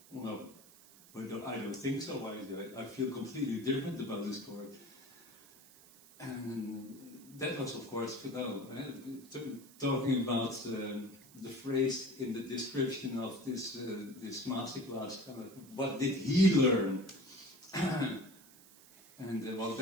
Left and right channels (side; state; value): right; noise; hiss, 22 dB below the sound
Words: well, Well, no, I don't think so. I feel completely different about this chord. And that was, of course, talking about the phrase in the description of this masterclass. What did he learn? And well,